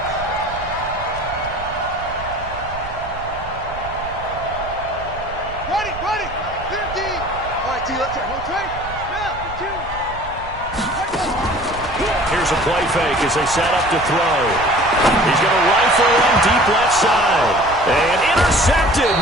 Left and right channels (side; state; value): right; noise; rumble, 13 dB below the sound